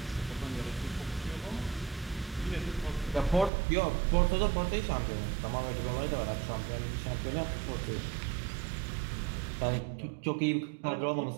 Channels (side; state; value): left; drops out; at 3.5 s